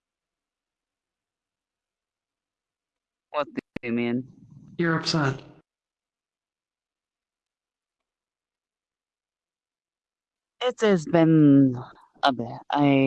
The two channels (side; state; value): both; identical; correlation 1.00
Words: What do you mean? You're upset. It has been a